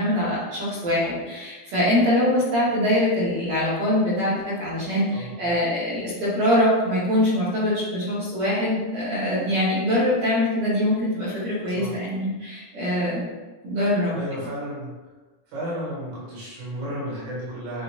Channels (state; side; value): late; left; 17 ms